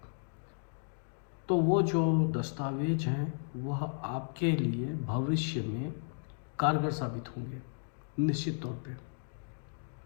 तो वो जो दस्तावेज हैं वह आपके लिए भविष्य में कारगर साबित होंगे निश्चित तौर पे।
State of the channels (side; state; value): right; silent; digital silence